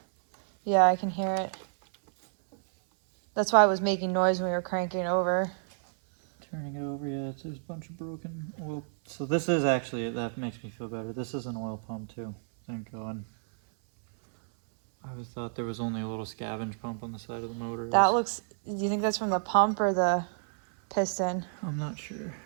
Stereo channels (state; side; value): silent; left; 58 dB below the other